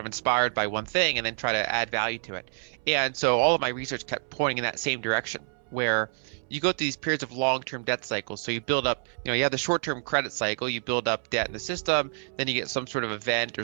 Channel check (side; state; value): left; silent; 60 dB below the other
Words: inspired by one thing and then try to add value to it. And so all of my research kept pointing in that same direction, where you go through these periods of long-term debt cycles. So you build up, you have the short-term credit cycle, you build up debt in the system, then you get some sort of event or